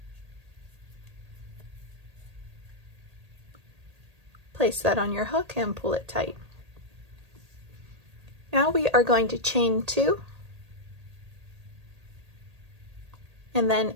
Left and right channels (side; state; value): left; late; 1.8 ms